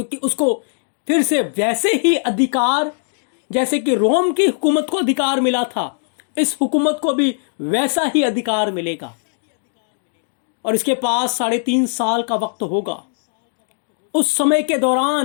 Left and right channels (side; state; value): right; silent; digital silence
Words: उसको फिर से वैसे ही अधिकार, जैसे कि रोम की हुकूमत को अधिकार मिला था, इस हुकूमत को भी वैसा ही अधिकार मिलेगा। और इसके पास 3.5 साल का वक्त होगा। उस समय के